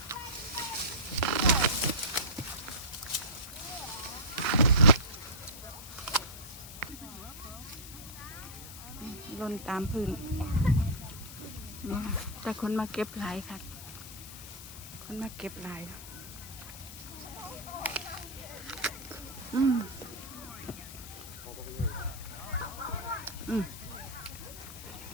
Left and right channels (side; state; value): left; noise; hiss, 13 dB below the sound